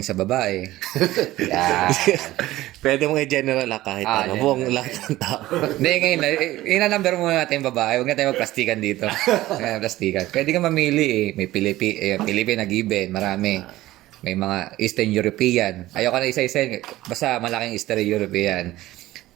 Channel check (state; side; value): quieter; left; 16.4 dB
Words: sa babae. Pwede mong i-general kahit buong lahat ng tao. Hindi, ngayon, ina-number muna natin yung babae. Huwag na tayo magplastikan dito. Plastikan. Pwede ka mamili eh. May Philippine na given. Marami. May mga Eastern European. Ayoko na isa-isa. Basta malaking Eastern European.